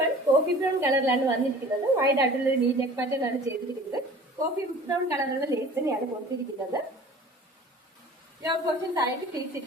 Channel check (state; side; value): normal; both; correlation 0.45